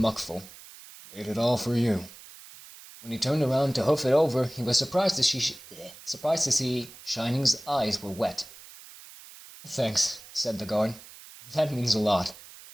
"Made it all for you." When he turned around to hoof it over, he was surprised to see Shining's eyes were wet. "Thanks," said the guard. "That means a lot."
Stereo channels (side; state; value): right; noise; hiss, 18 dB below the sound